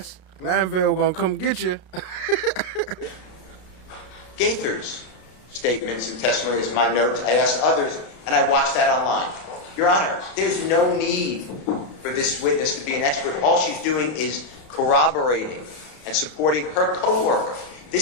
Glanville gonna come get you. GAITHER's statements and testimonies, my notes. I asked others, and I watched that online. Your Honor, there's no need for this witness to be an expert. All she's doing is corroborating and supporting her coworker.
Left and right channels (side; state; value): right; late; 32 ms